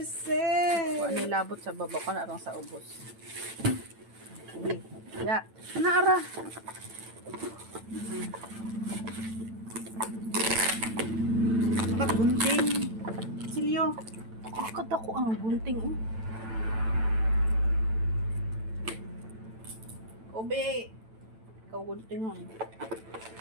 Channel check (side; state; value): left; late; 9.0 ms